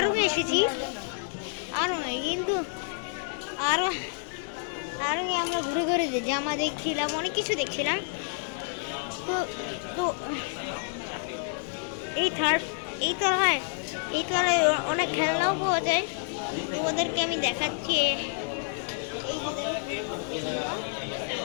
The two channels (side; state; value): right; silent; digital silence